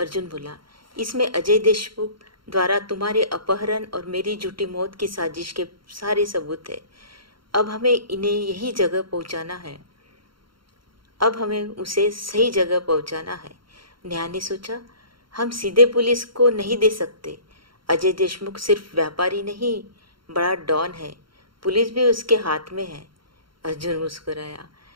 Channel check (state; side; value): late; left; 0.73 ms